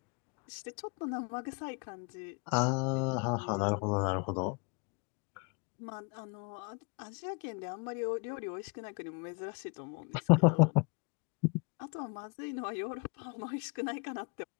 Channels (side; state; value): right; quieter; 32.5 dB